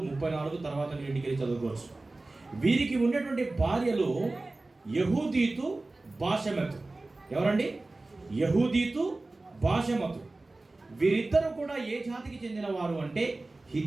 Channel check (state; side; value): quieter; left; 3.1 dB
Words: 34 తర్వాత మీరు ఇంటికి వెళ్ళి చదువుకోవచ్చు. వీరికి ఉన్నటువంటి భార్యలు యెహూదీతు, బాషెమతు. ఎవరండి? యెహూదీతు, బాషెమతు. వీరిద్దరు కూడా ఏ జాతికి చెందిన వారు అంటే